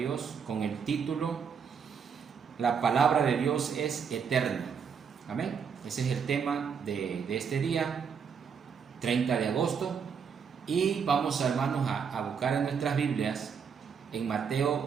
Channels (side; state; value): left; quieter; 6.6 dB